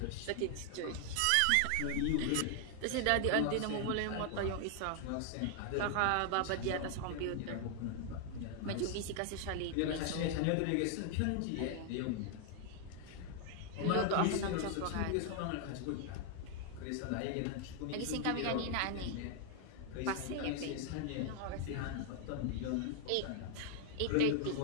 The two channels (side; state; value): both; different; correlation 0.00